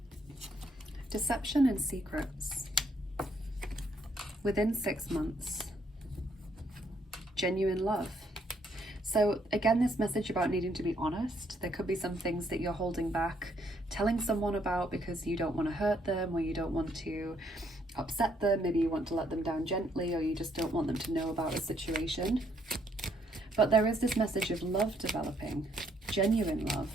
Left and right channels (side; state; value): both; normal; correlation 0.71